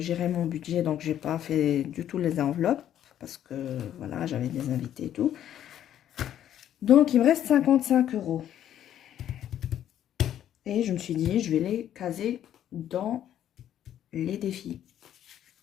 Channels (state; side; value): quieter; right; 10.9 dB